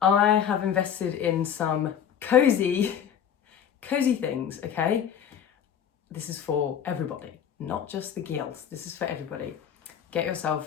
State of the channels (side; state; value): right; quieter; 8.7 dB